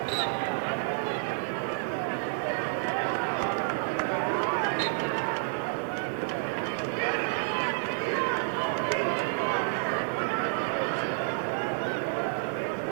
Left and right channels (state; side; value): silent; left; digital silence